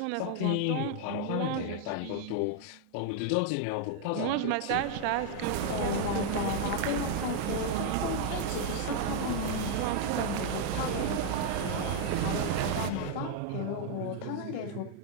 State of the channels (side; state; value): both; different; correlation 0.00